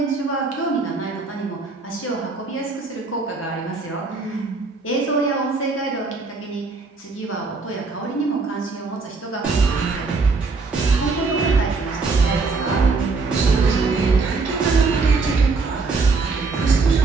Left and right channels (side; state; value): left; quieter; 4.1 dB